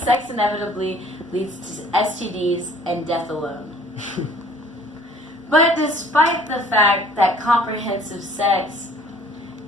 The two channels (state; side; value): normal; both; correlation 0.54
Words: leads to STDs and death alone. But despite the fact that comprehensive sex